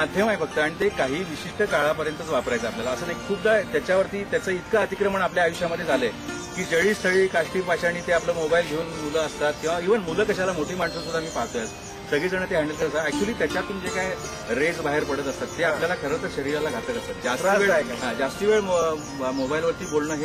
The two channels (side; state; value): both; identical; correlation 1.00